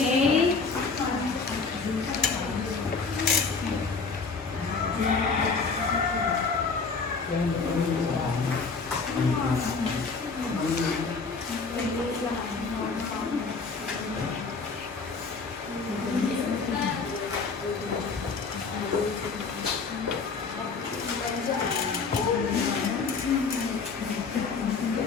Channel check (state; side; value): quieter; right; 4.6 dB